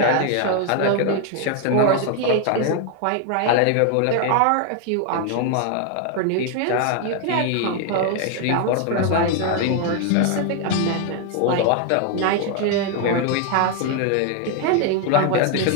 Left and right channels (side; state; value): both; different; correlation 0.01